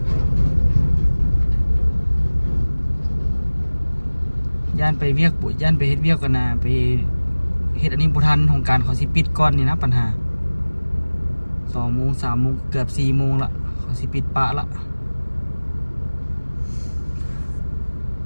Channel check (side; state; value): both; inverted; correlation -1.00